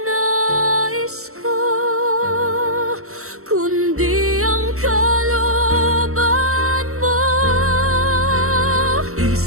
nais ko, kundi ang kalooban mo.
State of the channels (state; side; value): late; left; 0.63 ms